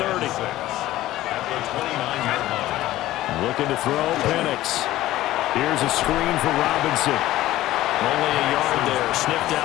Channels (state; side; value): quieter; right; 15.4 dB